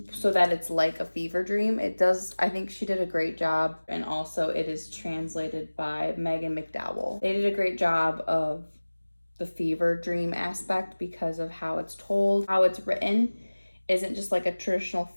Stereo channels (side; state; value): both; inverted; correlation -1.00